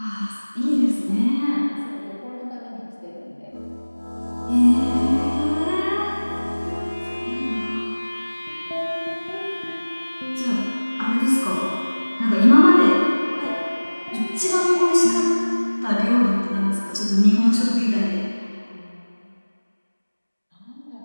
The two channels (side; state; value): both; inverted; correlation -1.00